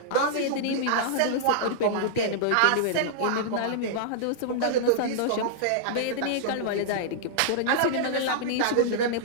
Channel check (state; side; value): different; both; correlation -0.02